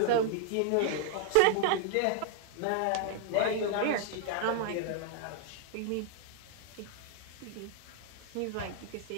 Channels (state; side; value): different; both; correlation -0.01